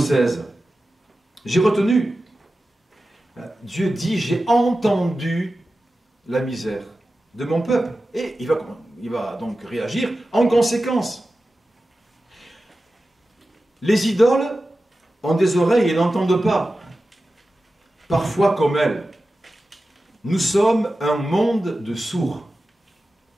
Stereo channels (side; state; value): both; normal; correlation 0.94